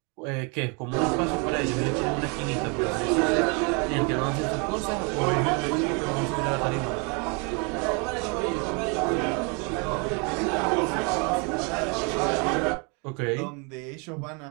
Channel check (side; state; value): left; quieter; 33.0 dB